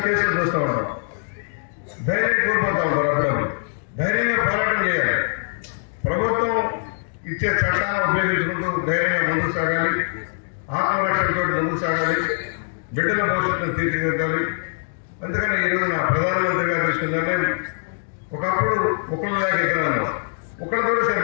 కేసులు చూస్తూ ఉంటాం, ధైర్యం కోల్పోతూ ఉంటారు. అప్పుడప్పుడు ధైర్యంగా పోరాటం చేయాలి. ప్రభుత్వం ఇచ్చే చట్టాలను ఉపయోగించుకుంటూ ధైర్యంగా ముందుకు సాగాలి, ఆత్మరక్షణతో ముందుకు సాగాలి, బిడ్డల భవిష్యత్తును తీర్చిదిద్దాలి. అందుకని ఈరోజు నా ప్రధానమంత్రి గారు తీసుకుందానే ఒకప్పుడు ఒకళ్ళు దాకా ఎక్కడ ఒకళ్ళతో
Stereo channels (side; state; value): right; silent; digital silence